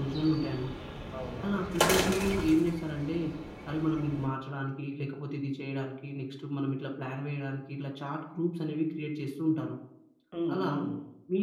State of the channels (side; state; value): both; identical; correlation 1.00